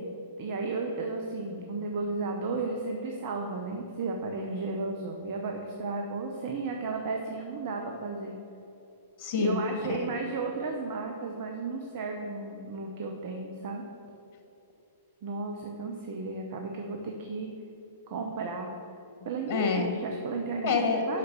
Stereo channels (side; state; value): both; inverted; correlation -0.37